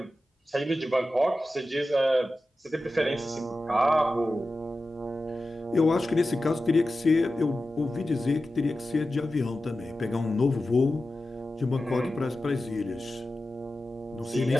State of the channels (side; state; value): both; normal; correlation 0.93